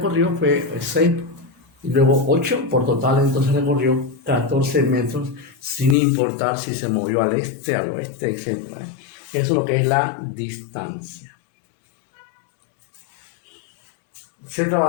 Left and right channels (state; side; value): drops out; right; at 6.0 s